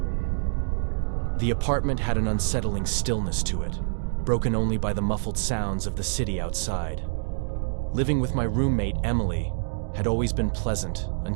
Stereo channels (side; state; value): left; silent; digital silence